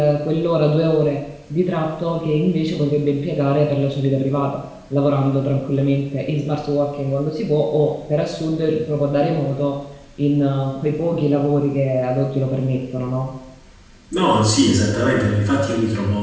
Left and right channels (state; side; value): identical; both; correlation 1.00